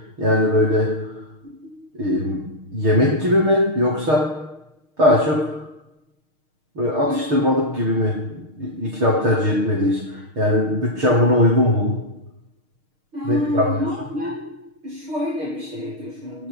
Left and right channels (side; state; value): left; late; 6.5 ms